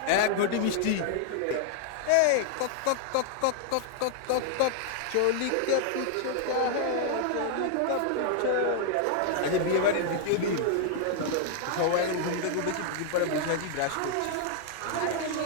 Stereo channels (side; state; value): both; different; correlation 0.00